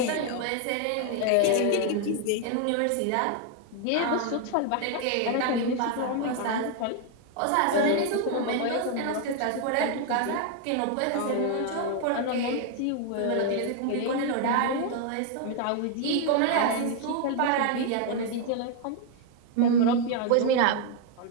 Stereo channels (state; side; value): different; both; correlation 0.00